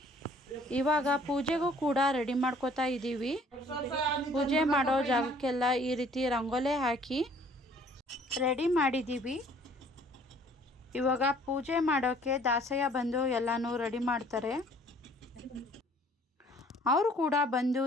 ಇವಾಗ ಪೂಜೆಗೂ ಕೂಡ ರೆಡಿ ಮಾಡ್ಕೋತಾ ಇದ್ದೀವಿ. ಪೂಜೆ ಮಾಡೋ ಜಾಗಕ್ಕೆಲ್ಲ ಈ ರೀತಿ ರಂಗೋಲೆ ಹಾಕಿ ರೆಡಿ ಮಾಡಿದ್ದೀವಿ. ಇವಾಗ ಪೂಜೆ ಮಾಡೋಕ್ಕೆ ದಾಸಯ್ಯ ಬಂದು ಎಲ್ಲನೂ ರೆಡಿ ಮಾಡ್ತಾರೆ. ಅವರು ಕೂಡ ಬಂದು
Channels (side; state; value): both; normal; correlation 0.56